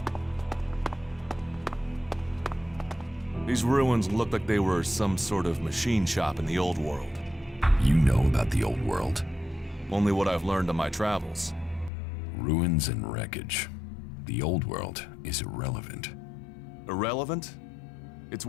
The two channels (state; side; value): drops out; right; at 11.9 s